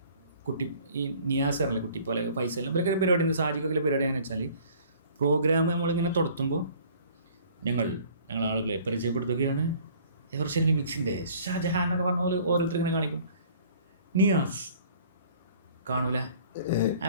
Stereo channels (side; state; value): both; inverted; correlation -0.52